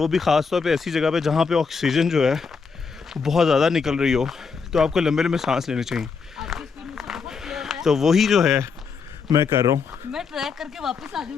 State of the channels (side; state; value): right; quieter; 5.4 dB